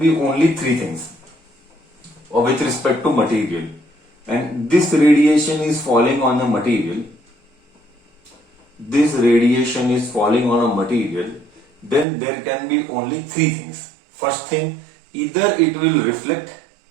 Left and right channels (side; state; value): left; drops out; at 12.1 s